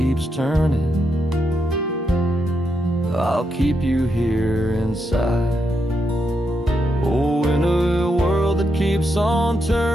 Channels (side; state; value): both; normal; correlation 0.82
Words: turning, I'll keep you here inside. Oh, in a world that keeps on